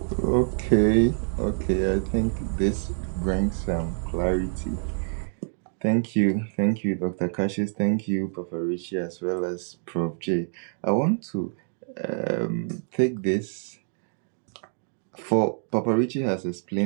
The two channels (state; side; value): silent; left; digital silence